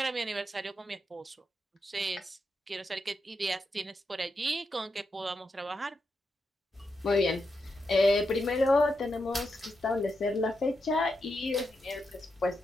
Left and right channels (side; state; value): both; normal; correlation 0.85